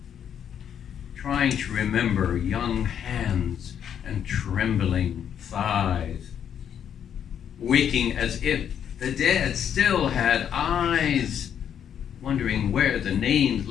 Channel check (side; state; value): right; quieter; 8.8 dB